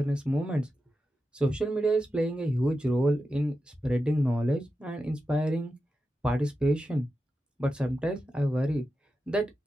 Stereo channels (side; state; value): both; normal; correlation 0.90